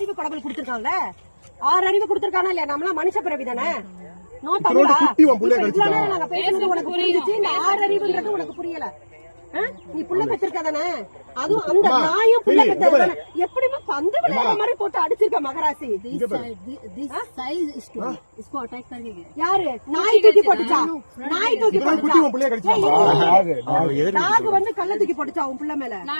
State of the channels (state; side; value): inverted; both; correlation -1.00